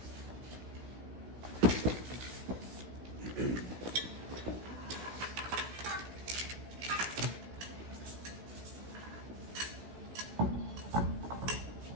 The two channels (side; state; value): left; late; 17 ms